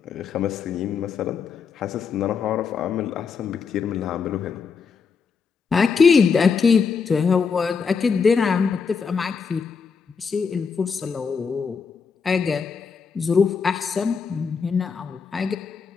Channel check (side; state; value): right; quieter; 5.7 dB